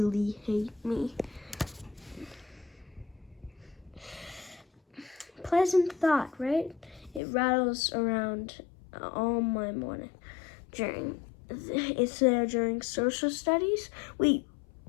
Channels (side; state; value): right; drops out; at 7.2 s